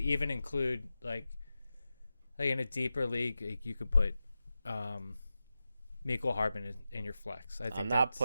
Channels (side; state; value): both; inverted; correlation -0.92